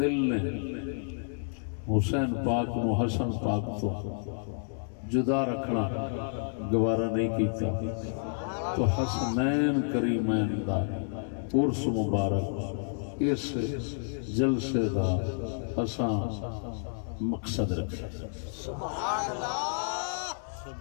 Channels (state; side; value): silent; right; digital silence